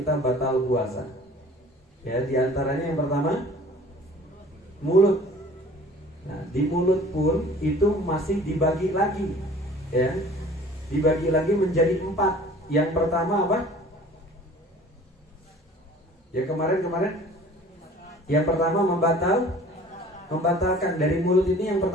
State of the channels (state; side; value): normal; both; correlation 0.48